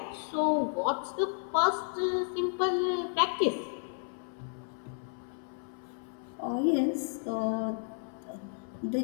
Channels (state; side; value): silent; right; 56 dB below the other